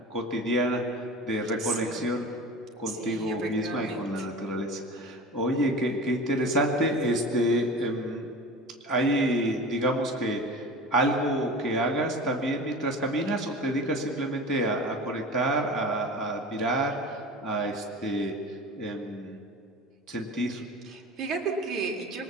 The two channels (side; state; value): both; normal; correlation 0.35